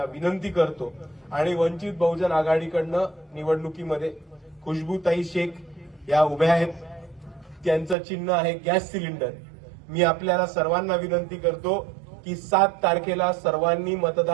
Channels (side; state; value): left; drops out; at 8.0 s